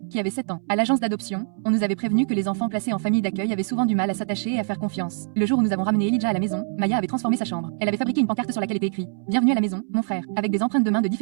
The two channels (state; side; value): silent; left; 63 dB below the other